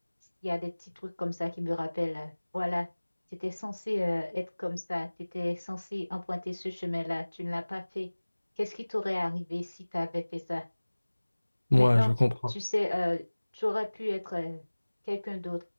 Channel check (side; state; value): both; inverted; correlation -1.00